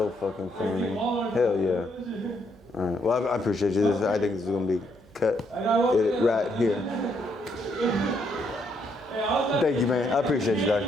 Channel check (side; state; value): right; noise; hum, 28 dB below the sound